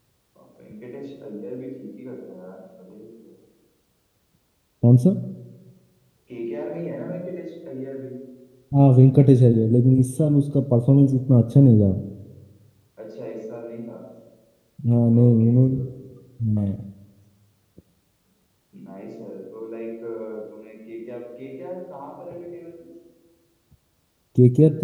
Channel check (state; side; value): identical; both; correlation 1.00